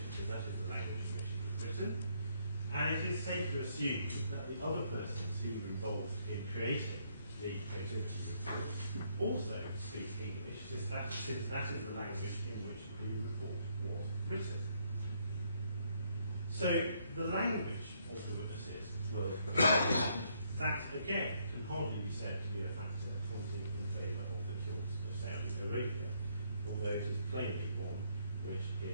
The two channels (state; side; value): inverted; both; correlation -0.71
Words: because that is the language in which it was written. And it is safe to assume that the other persons who were involved in creating the Protiviti report also speak English, since that is the language in which the report was written. So the language of the witnesses will that again can hardly be said to be a factor pointing in favour of the cause of Saudi Arabia, although it is plainly one which